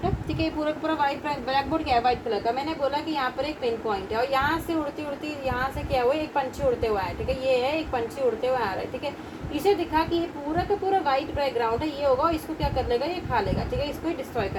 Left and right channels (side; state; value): both; identical; correlation 1.00